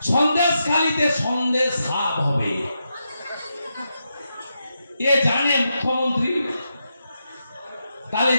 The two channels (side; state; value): both; inverted; correlation -0.85